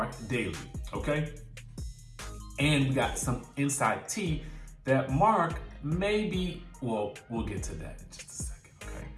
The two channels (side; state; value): both; identical; correlation 1.00